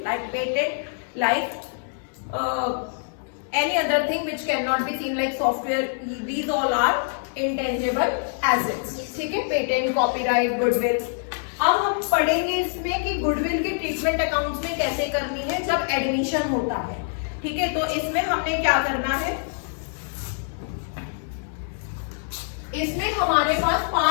like patent, like any other thing which cannot be seen like software. These all are intangible assets. ठीक है, पेटेंट, कॉपीराइट, गुडविल। अब हम पढ़ेंगे इसमें कि गुडविल की ट्रीटमेंट अकाउंट्स में कैसे करनी है जब एडमिशन होता है। ठीक है, तो इसमें हमने क्या करना है, इसमें हमारे पास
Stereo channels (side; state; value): right; silent; 62 dB below the other